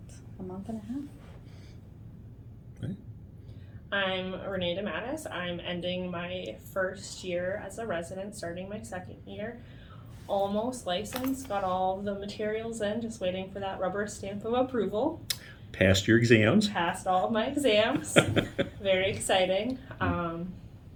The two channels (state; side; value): identical; both; correlation 1.00